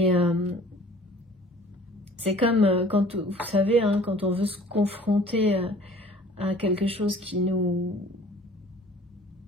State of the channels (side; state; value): both; normal; correlation 0.49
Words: c'est comme quand, vous savez, hein, quand on veut se confronter à quelque chose qui nous...